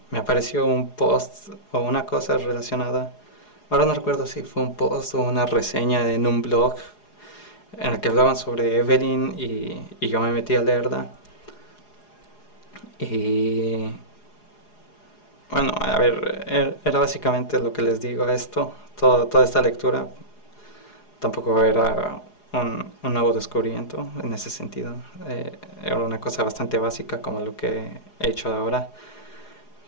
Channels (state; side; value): late; right; 4.8 ms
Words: me apareció un post o una cosa relacionada. Ahora no recuerdo si fue un post o una reseña en un blog en el que hablaban sobre Evelyn y yo me metí a leerla. Y bueno, a ver, era básicamente lo que les digo a esto. Toda esta lectura tampoco era un nuevo descubrimiento en ese sentido. Era una cosa bastante básica como lo que he hecho ahora.